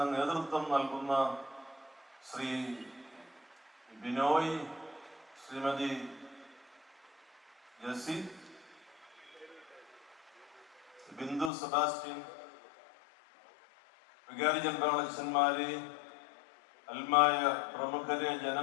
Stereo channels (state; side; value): drops out; right; at 11.5 s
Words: നേതൃത്വം നൽകുന്ന ശ്രീ ബിനോയ്, ശ്രീമതി ജസി, ബിന്ദു സെബാസ്റ്റ്യൻ, വികാരി ജനറലച്ഛന്മാരെ, അൽമായ പ്രമുഖരെ,